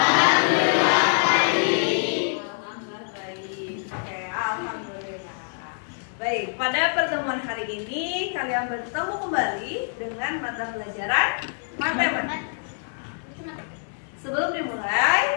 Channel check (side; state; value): right; silent; digital silence